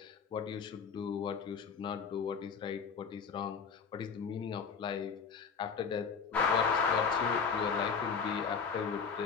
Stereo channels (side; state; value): right; quieter; 5.8 dB